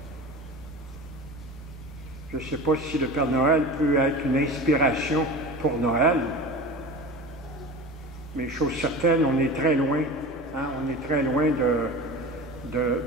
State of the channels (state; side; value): normal; both; correlation 0.33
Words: Je ne sais pas si le Père Noël peut être une inspiration pour Noël, mais chose certaine, on est très loin, on est très loin